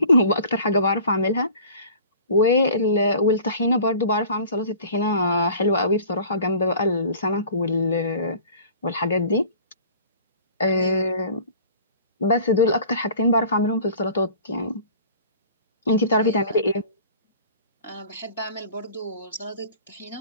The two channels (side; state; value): both; inverted; correlation -0.45